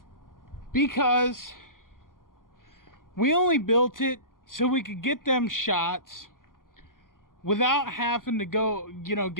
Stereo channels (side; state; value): right; late; 0.91 ms